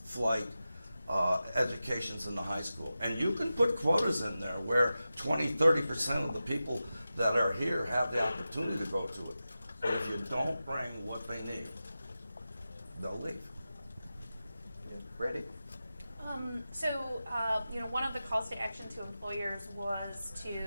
flight educations in the high school? And you can put quotas in there where 20–30% of the people that are here have the opportunity to go to it. But if you don't bring what they need, they'll leave. yeah, Brandy? One of the calls to action to employers was to,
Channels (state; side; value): inverted; both; correlation -0.93